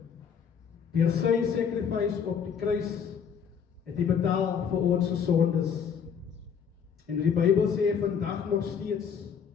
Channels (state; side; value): quieter; right; 7.1 dB